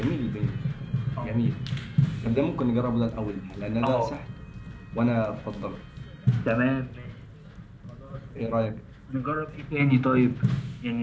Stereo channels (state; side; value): identical; both; correlation 1.00